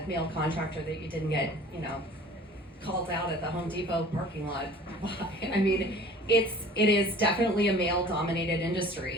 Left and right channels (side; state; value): both; normal; correlation 0.46